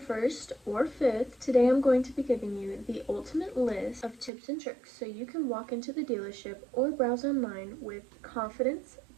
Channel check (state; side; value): drops out; left; at 4.3 s